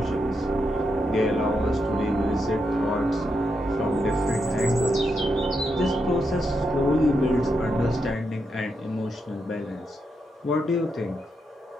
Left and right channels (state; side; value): normal; both; correlation 0.83